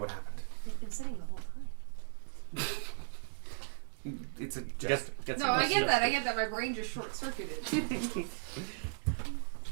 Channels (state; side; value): silent; left; digital silence